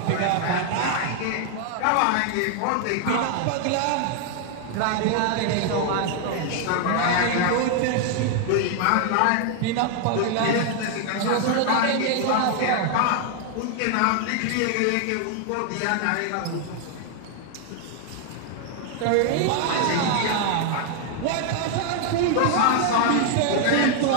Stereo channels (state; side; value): different; both; correlation 0.00